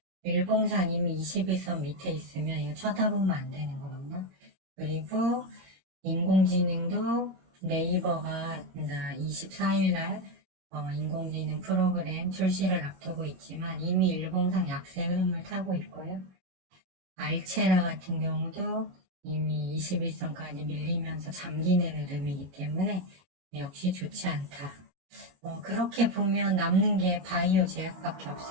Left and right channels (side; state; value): left; late; 22 ms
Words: 일봉상 이미 21선 밑에 있으면 이거 쳐다보면 안 되는 겁니다. 그리고 인공지능도 네이버가 24일날 인공지능 프로그램 출시를 앞두고 있지만 이미 일봉상 약세 흐름을 타고 있고요. 알체라 같은 경우도 이미 21선까지 밀리면서 잠기는 흐름이기 때문에 역시 좋지 않다. 그렇게 보면 남는 게 바이오 제약밖에